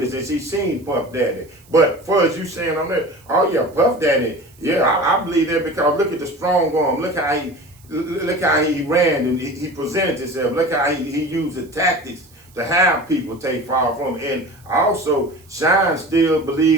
and she seen Puff Daddy. But for as you saying on that, oh yeah, Puff Daddy, yeah, I believe that, because look at the strong arm. Look how he ran and he presented himself. Look how he used the tactics to have people take fall from him. And also, Shine still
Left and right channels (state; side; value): noise; right; hiss, 28 dB below the sound